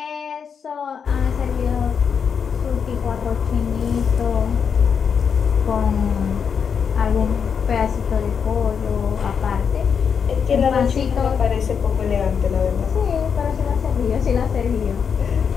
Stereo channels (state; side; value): quieter; right; 6.7 dB